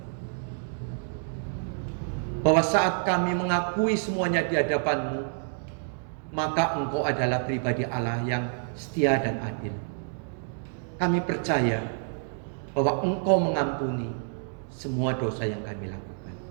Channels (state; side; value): silent; left; digital silence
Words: bahwa saat kami mengakui semuanya di hadapan-Mu, maka Engkau adalah pribadi Allah yang setia dan adil. kami percaya bahwa Engkau mengampuni semua dosa yang kami lakukan.